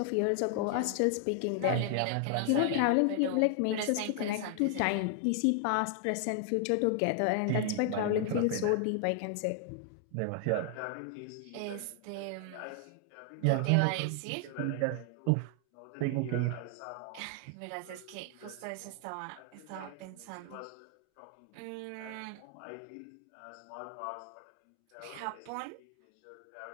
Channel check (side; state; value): both; different; correlation 0.00